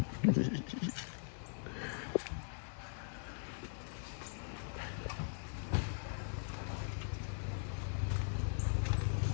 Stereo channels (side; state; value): right; silent; digital silence